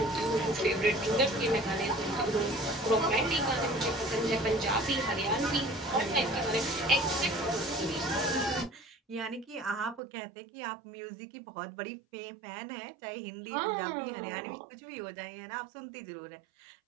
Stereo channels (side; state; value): left; drops out; at 10.0 s